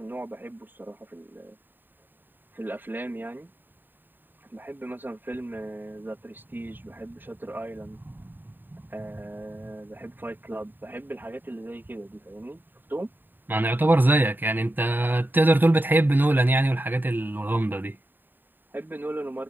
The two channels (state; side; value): late; left; 0.092 ms